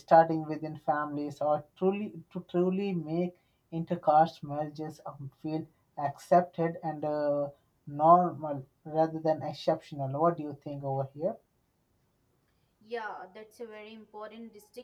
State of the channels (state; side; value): identical; both; correlation 1.00